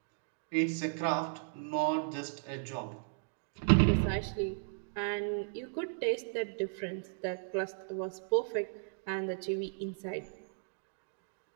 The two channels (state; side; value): silent; left; digital silence